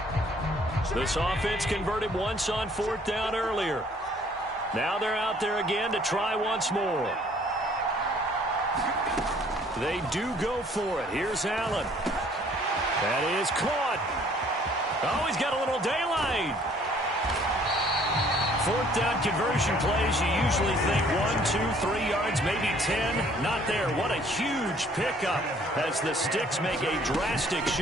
This offense converted once on 4th down earlier. Now they're out there again to try once more. They do go for it. Here's Allen. That is caught. Oh, he's got a little daylight. 4th down conversion plays, you usually think 1, 2, 3 yards, maybe 10. Not there. What a huge pickup as the Sticks make a drastic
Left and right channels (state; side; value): normal; both; correlation 0.59